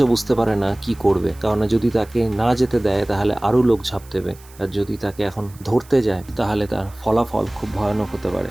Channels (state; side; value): noise; right; hiss, 24 dB below the sound